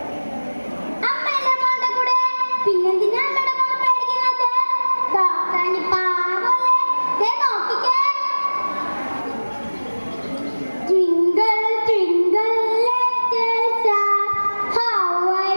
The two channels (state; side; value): inverted; both; correlation -1.00